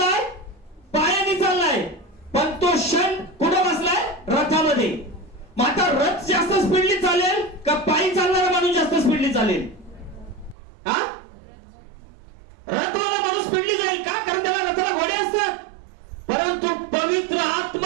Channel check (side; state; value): left; drops out; at 10.6 s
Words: पायाने चाललाय. पण तो क्षण कुठे बसलाय? रथामध्ये. मग आता रथ जास्त स्पीडली चालेल का पायी चालणारा माणूस जास्त स्पीडली चालेल? हा, रथवाला माणूस स्पीडली जाईल का? कारण त्याला रथाला घोडे असतात. परंतु पवित्र